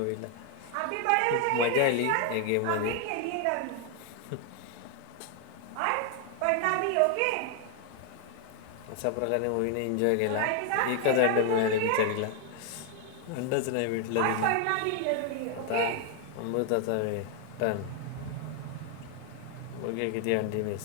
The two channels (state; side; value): different; both; correlation 0.00